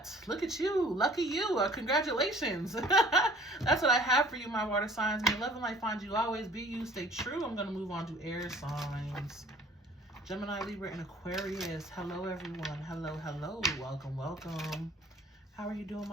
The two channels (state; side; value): normal; both; correlation 0.51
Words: look at you. Lucky you. Congratulations. That's what I have for you, my water signs. May love and light find you, always be you, stay true. I'm going to move on to air signs. Gemini, Libra, and Aquarius. Hello, everyone. Hello, hello. Welcome, welcome. How are you doing,